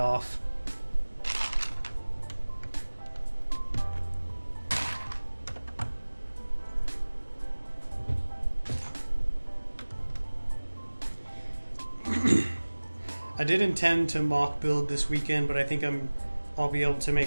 I did intend to mock build this weekend, but I think I'll be able to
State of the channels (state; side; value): inverted; both; correlation -1.00